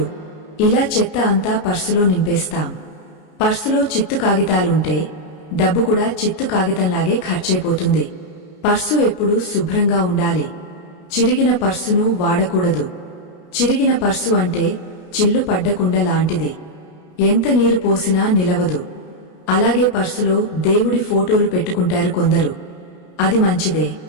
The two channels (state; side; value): late; right; 33 ms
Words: ఇలా చెత్త అంతా పర్సులో నింపేస్తాం. పర్సులో చిత్తు కాగితాలుంటే డబ్బు కూడా చిత్తు కాగితంలాగే ఖర్చయిపోతుంది. పర్సు ఎప్పుడూ శుభ్రంగా ఉండాలి. చిరిగిన పర్సును వాడకూడదు. చిరిగిన పర్సు అంటే చిల్లు పడ్డకుండ లాంటిది. ఎంత నీరు పోసినా నిలవదు. అలాగే పర్సులో దేవుడి ఫోటోలు పెట్టుకుంటారు కొందరు. అది మంచిదే,